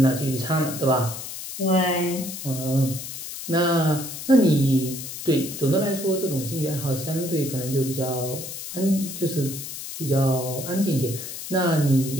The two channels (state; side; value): noise; left; hiss, 9 dB below the sound